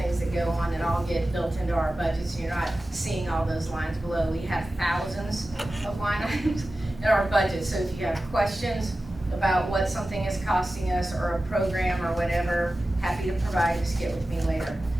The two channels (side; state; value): both; normal; correlation 0.95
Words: that go on that all get built into our budget, so you're not seeing all those lines below. We have thousands of line items in our budget, so if you have questions about what something is costing us or a program or whatever, happy to provide, just get with me later.